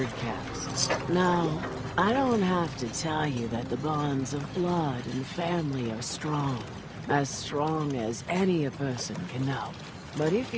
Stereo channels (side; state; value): both; identical; correlation 1.00